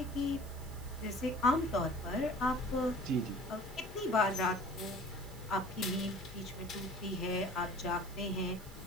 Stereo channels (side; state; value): right; noise; hiss, 19 dB below the sound